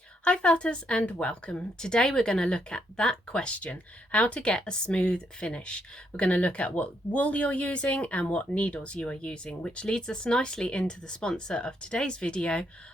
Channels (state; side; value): normal; both; correlation 0.76